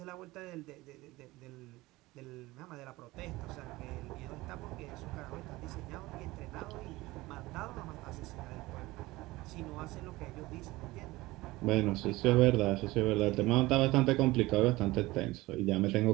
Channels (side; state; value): left; quieter; 19.7 dB